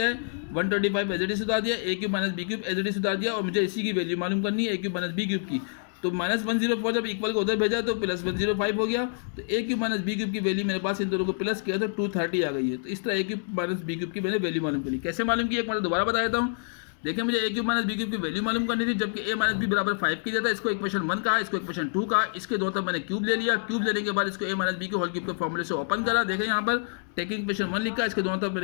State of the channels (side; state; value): right; silent; digital silence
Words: है, 125 एज इट इज उतार दिया, a cube minus B cube as it is उतार दिया और मुझे इसी की वैल्यू मालूम करनी है a cube minus B cube की। तो माइनस 104 जब इक्वल को उधर भेजा तो प्लस 105 हो गया, तो a cube minus B cube की वैल्यू मेरे पास इन दोनों को प्लस किया तो 230 आ गई है। तो इस तरह a cube minus B cube की मैंने वैल्यू मालूम करी। कैसे मालूम की एक बार दोबारा बता देता हूँ। देखिए मुझे a cube minus B cube की वैल्यू मालूम करनी थी, जबकि a माइनस बी बराबर 5 की जाता है। इसको इक्वेशन 1 कहा, इसको इक्वेशन 2 कहा, इसके दोनों तरफ मैंने क्यूब ले लिया। क्यूब लेने के बाद इसको a माइनस बी के होल क्यूब के फॉर्मूले से ओपन करा। देखें यहाँ पर टेकिंग इक्वेशन 1 लिखा, इसके दोनों तरफ